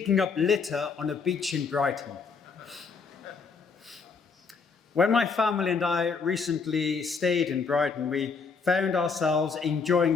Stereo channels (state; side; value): quieter; right; 5.1 dB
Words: up litter on a beach in Brighton? When my family and I recently stayed in Brighton, we found ourselves